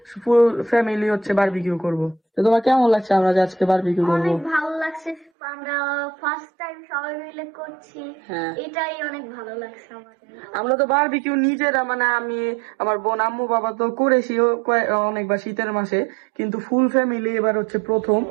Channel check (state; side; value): drops out; left; at 5.3 s